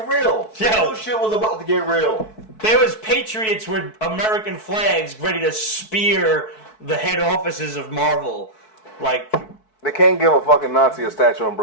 real. They knew shit was about to get real. There was patriots with American flags ready to spear the head offices of Marvel. Like, they can't give a fucking Nazi a statue in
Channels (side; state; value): right; late; 4.6 ms